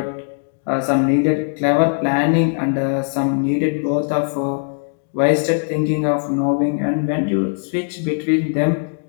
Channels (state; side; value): silent; right; digital silence